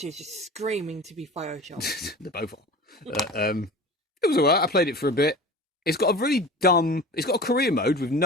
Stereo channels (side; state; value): both; normal; correlation 0.36